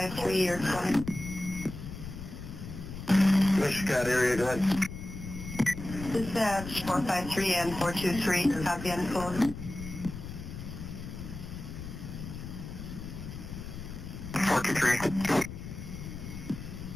you're calling. Scott area, go ahead. Dispatch 453 and 423, copy and code. 423.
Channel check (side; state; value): left; noise; rumble, 10 dB below the sound